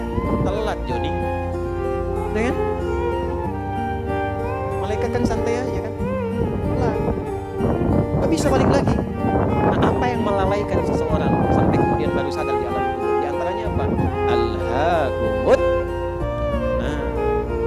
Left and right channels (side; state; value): both; identical; correlation 1.00